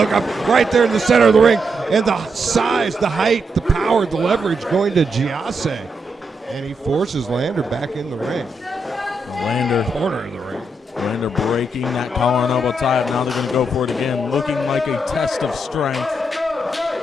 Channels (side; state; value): both; normal; correlation 0.81